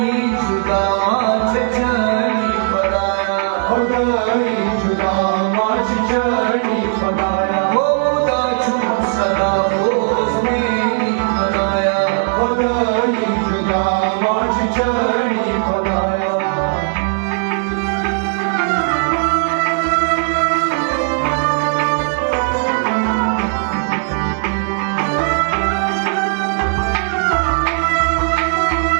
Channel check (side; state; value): left; silent; digital silence